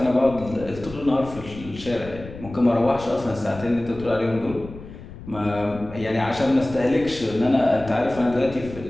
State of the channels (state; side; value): noise; left; rumble, 15 dB below the sound